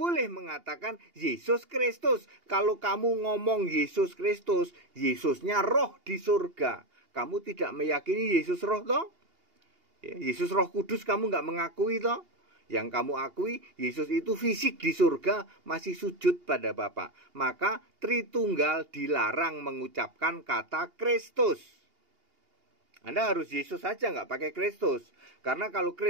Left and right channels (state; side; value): late; left; 2.8 ms